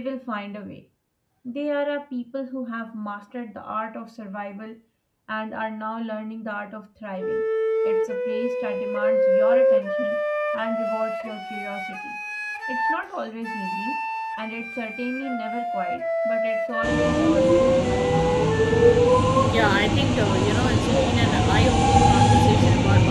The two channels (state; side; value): identical; both; correlation 1.00